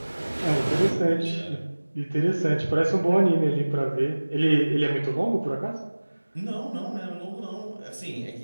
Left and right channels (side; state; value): both; inverted; correlation -1.00